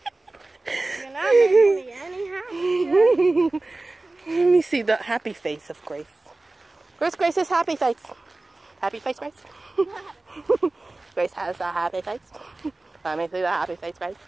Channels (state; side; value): quieter; left; 3.1 dB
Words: You're not making me any happier. Let me see the happy face of Grace. Where's Grace's happy face? Happy face, Grace? Grace has a happy face. Let me see the happy face, Grace.